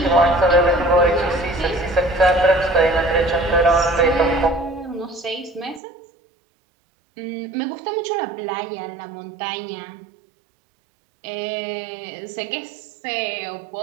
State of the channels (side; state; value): left; drops out; at 5.8 s